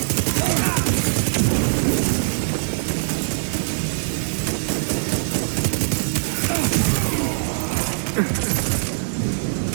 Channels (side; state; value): left; silent; digital silence